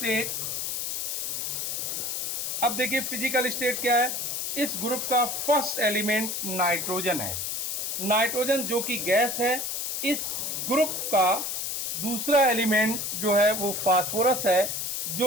अब देखिए फिजिकल स्टेट क्या है। इस ग्रुप का फर्स्ट एलिमेंट नाइट्रोजन है। नाइट्रोजन जो कि गैस है। इस ग्रुप का दूसरा एलिमेंट जो है वो फास्फोरस है,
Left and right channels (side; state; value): left; noise; hiss, 2 dB below the sound